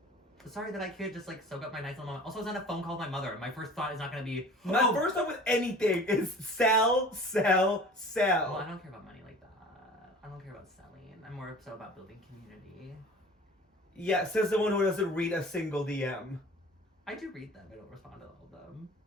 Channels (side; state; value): both; normal; correlation 0.43